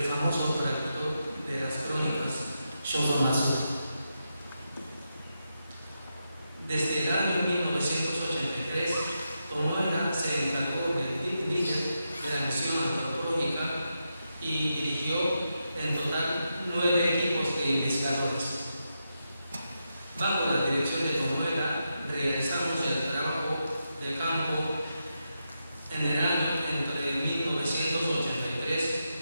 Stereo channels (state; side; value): inverted; both; correlation -0.86